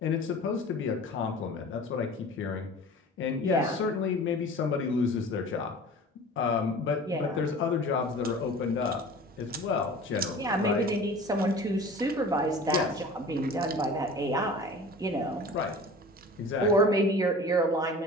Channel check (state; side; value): normal; both; correlation 0.41